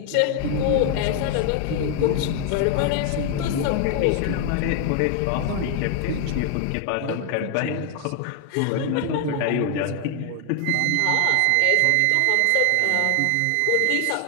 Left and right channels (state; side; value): different; both; correlation 0.00